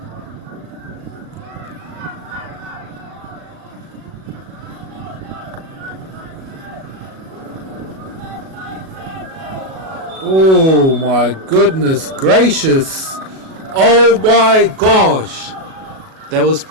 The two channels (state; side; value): late; left; 37 ms